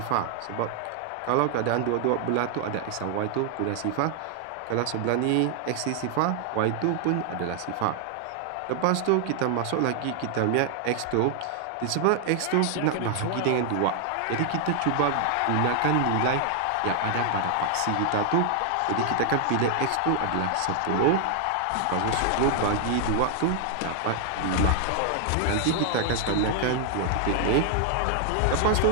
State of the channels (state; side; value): different; both; correlation 0.00